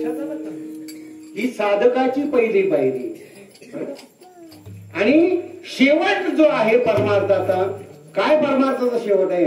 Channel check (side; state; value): both; identical; correlation 1.00